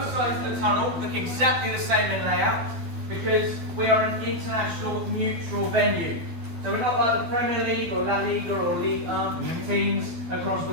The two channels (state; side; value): late; left; 12 ms